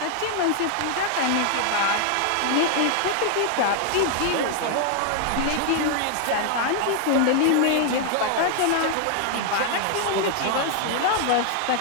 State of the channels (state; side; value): different; both; correlation 0.00